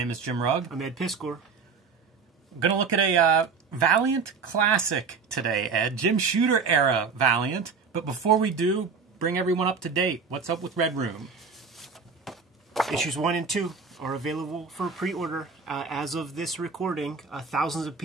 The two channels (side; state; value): left; quieter; 5.2 dB